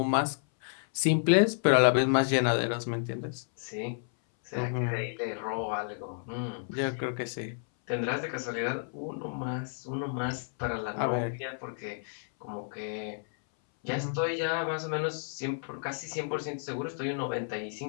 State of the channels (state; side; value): silent; right; 57 dB below the other